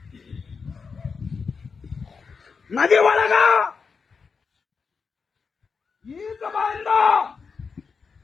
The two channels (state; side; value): quieter; right; 5.3 dB